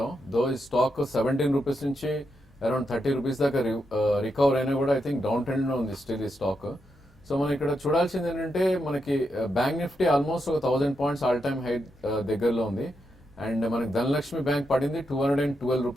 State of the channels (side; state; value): both; normal; correlation 0.84